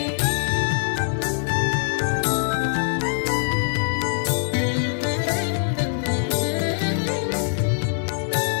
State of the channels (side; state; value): right; silent; digital silence